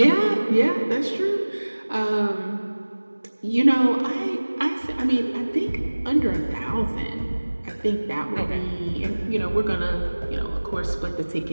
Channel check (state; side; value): inverted; both; correlation -1.00